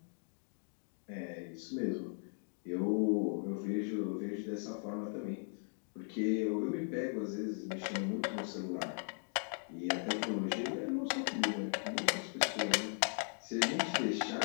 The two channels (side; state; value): right; silent; 52 dB below the other